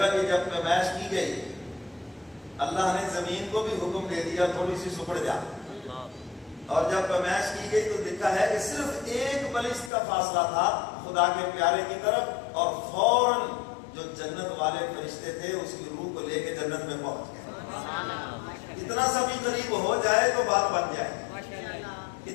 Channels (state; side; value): drops out; right; at 9.9 s